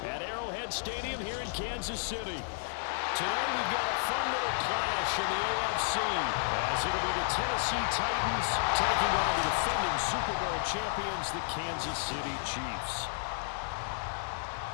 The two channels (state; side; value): silent; right; 56 dB below the other